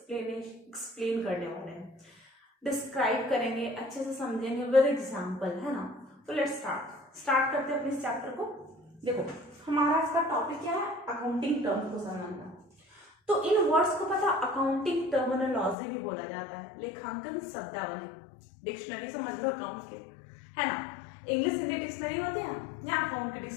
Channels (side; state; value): right; drops out; at 15.8 s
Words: करने वाले हैं, डिस्क्राइब करेंगे, अच्छे से समझेंगे विद एग्जाम्पल, है ना। तो लेट्स स्टार्ट करते हैं अपने इस चैप्टर को। देखो हमारा इसका टॉपिक क्या है? अकाउंटिंग टर्म को समझना। तो इन वर्ड्स को पता अकाउंटिंग टर्मिनोलॉजी भी बोला जाता है, लेखांकन शब्दावली। डिक्शनरी समझ लो अकाउंट के, है ना। इंग्लिश हिंदी डिक्शनरी होती है या अकाउंट की